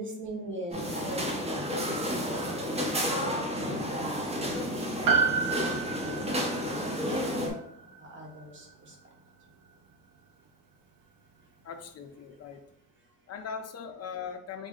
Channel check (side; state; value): both; normal; correlation 0.13